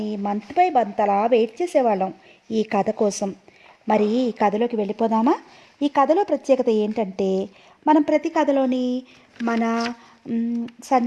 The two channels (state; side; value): identical; both; correlation 1.00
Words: మంత్ బై మంత్ అలా వెయిట్ చేసేవాళ్ళం ఈ కథ కోసం. మరి ఈ కథలోకి వెళ్ళిపోదామా? ఈ కథలో ప్రత్యేకత ఏంటంటే, మనం ప్రతి కథలోని మన